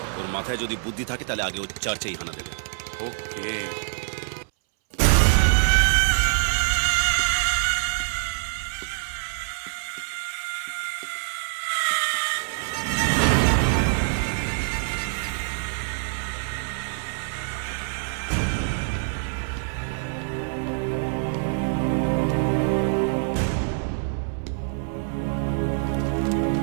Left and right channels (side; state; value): left; silent; 62 dB below the other